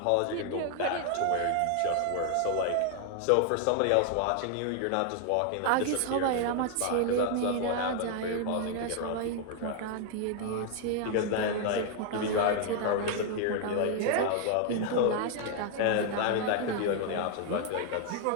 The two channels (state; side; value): different; both; correlation 0.00